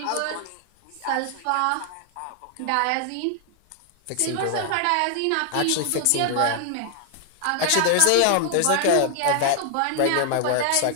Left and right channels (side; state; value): both; different; correlation 0.00